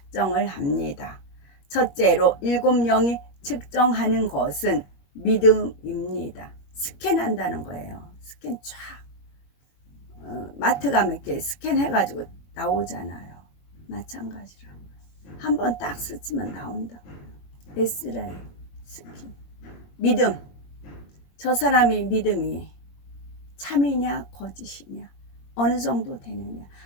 합니다. 첫째로 7영이 측정하는 것은 믿음입니다. 스캔한다는 거예요. 스캔 쫙. 마트 가면 이렇게 스캔해가지고 나오잖아요. 마찬가지로 한번 딱 스치면 나온다고요. 에스라엘 스캔. 믿음. 저 사람이 믿음이 참이냐 거짓이냐 어느 정도 되느냐,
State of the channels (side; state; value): right; late; 21 ms